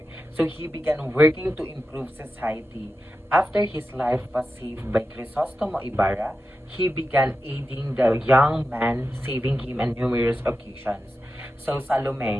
So he began working to improve society. After his life was saved by Crisostomo Ibarra, he began aiding the young man, saving him on numerous occasions. So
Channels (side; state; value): both; normal; correlation 0.91